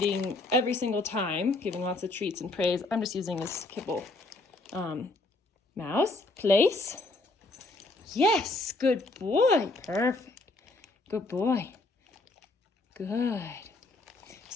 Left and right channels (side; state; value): right; quieter; 3.0 dB